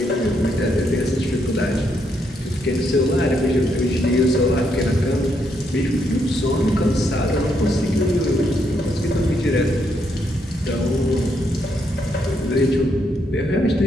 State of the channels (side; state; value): both; normal; correlation 0.76